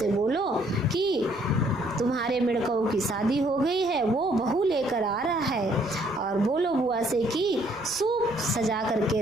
बोलो कि तुम्हारे मेढकों की शादी हो गई है, वो बहू लेकर आ रहा है, और बोलो बुआ से कि सूप सजा करके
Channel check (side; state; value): right; noise; rumble, 25 dB below the sound